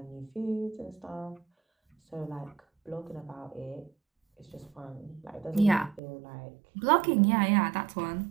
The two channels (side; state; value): left; drops out; at 6.0 s